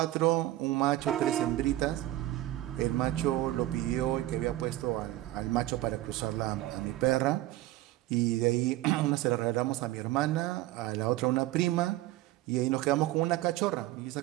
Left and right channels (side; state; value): left; quieter; 16.0 dB